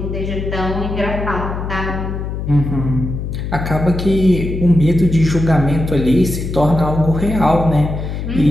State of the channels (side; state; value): left; noise; hum, 5 dB below the sound